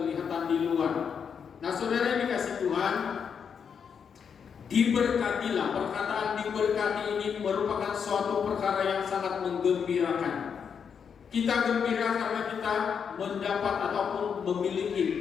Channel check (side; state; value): right; quieter; 6.9 dB